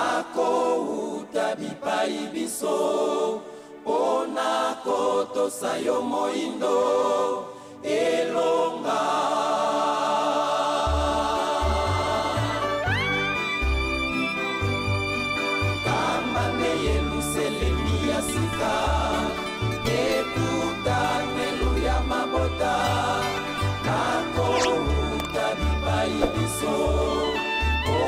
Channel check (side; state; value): both; identical; correlation 1.00